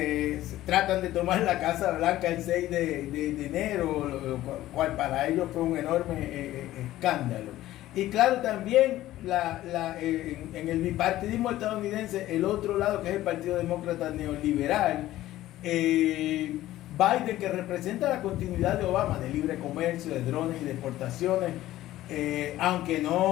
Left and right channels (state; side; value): quieter; right; 14.9 dB